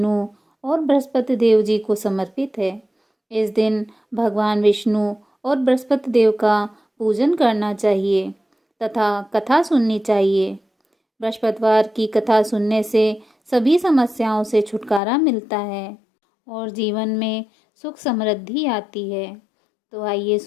और बृहस्पति देव जी को समर्पित है। इस दिन भगवान विष्णु और बृहस्पति देव का पूजन करना चाहिए तथा कथा सुननी चाहिए। बृहस्पतिवार की कथा सुनने से सभी समस्याओं से छुटकारा मिलता है और जीवन में सुख समृद्धि आती है। तो आइए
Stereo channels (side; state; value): right; drops out; at 15.0 s